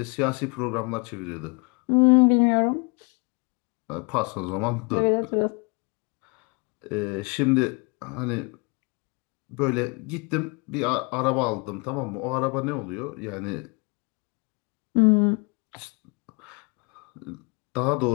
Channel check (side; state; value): right; quieter; 32.0 dB